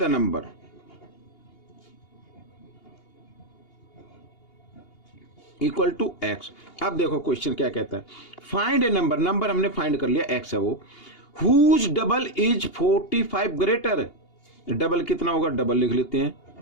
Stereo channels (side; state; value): right; late; 2.8 ms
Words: number. Equal to x। अब देखो क्वेश्चन क्या कहता है, फाइंड ए नंबर हमने फाइंड कर लिया, x है वो, whose double is 45 greater, double कितना होगा डबल लिख लेते हैं,